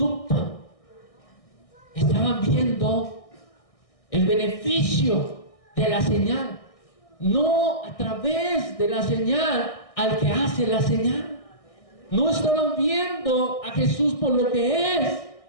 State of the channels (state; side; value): late; right; 1.6 ms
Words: Estaban viendo el beneficio de la señal. No a través de la señal al que hace la señal. No estaban viendo a Jesús por lo que es.